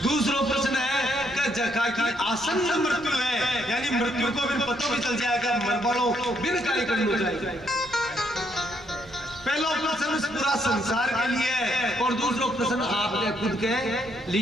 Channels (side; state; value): left; noise; rumble, 23 dB below the sound